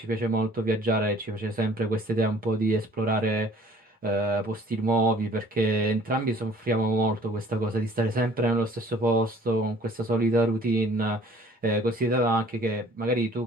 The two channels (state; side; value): normal; both; correlation 0.53